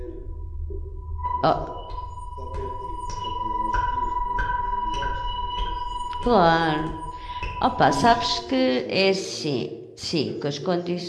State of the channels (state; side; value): identical; both; correlation 1.00